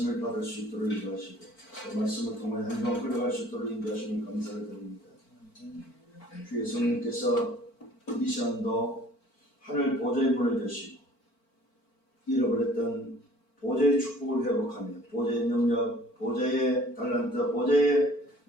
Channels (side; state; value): right; late; 4.5 ms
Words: 받을 수 있도록 인도하시고 또 말씀을 통해 한 주간 끌어갈 수 있도록 인도하시니 감사를 드립니다. 주의 성령께서 이 시간도 하늘 보좌의 문을 여시고 잃어버렸던 보좌의 축복을 회복하며 보좌의 능력, 보좌의 달란트, 보좌의